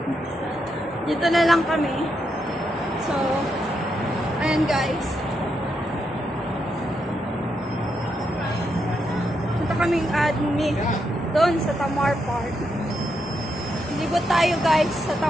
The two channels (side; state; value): both; normal; correlation 0.81